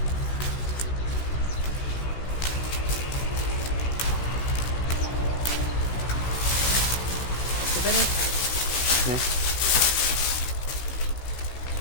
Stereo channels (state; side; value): late; right; 16 ms